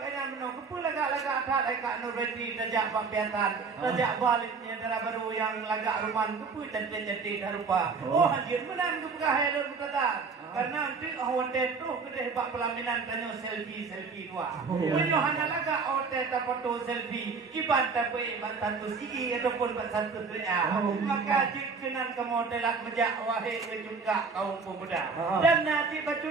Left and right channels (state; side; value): quieter; left; 4.9 dB